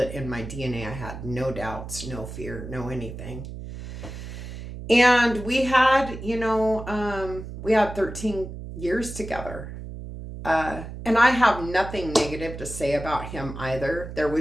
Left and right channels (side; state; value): right; noise; hum, 10 dB below the sound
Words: in my DNA. I had no doubts, no fear, no anything. And we had, we had 13 years together. And I have nothing negative to say about him either. There